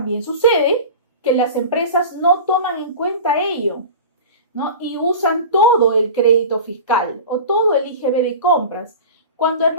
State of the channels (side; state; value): both; inverted; correlation -0.33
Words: sucede que las empresas no toman en cuenta ello, ¿no? Y usan todo el crédito fiscal o todo el IGB de compras, cuando en